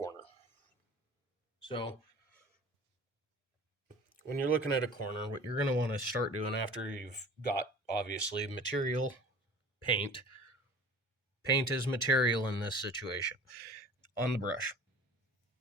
So when you're looking at a corner, what you're going to want to start doing after you've got obviously material, paint. Paint is material in this situation. On the brush,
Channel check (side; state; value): both; normal; correlation 0.43